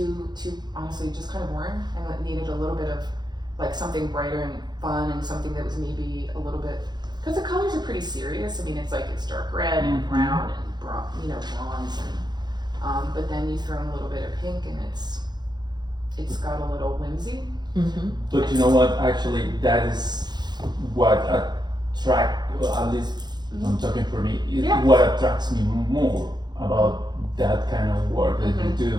honestly just kind of boring, and it needed a little bit of like something brighter and fun and something that was maybe a little bit because the colors are pretty serious. I mean, it's dark red and brown and bronze and but then you throw in a little bit of pink and it's got a little whimsy. But you know what? Actually, that is what at least I'm talking for me. What attracts me more about that kind of work that you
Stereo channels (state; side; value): late; left; 0.21 ms